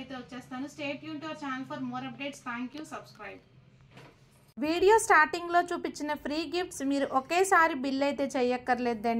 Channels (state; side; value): identical; both; correlation 1.00